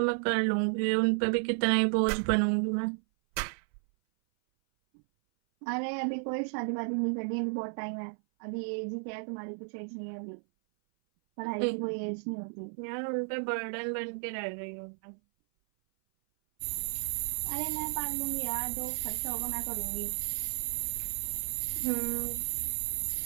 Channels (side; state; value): left; silent; 56 dB below the other